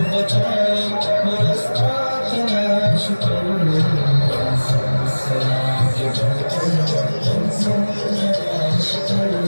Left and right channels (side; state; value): both; inverted; correlation -1.00